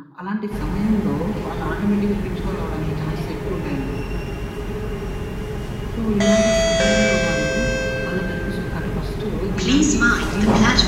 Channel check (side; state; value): both; identical; correlation 1.00